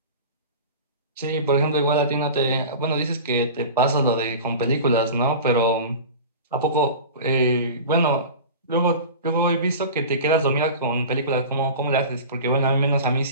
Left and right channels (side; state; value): both; inverted; correlation -0.34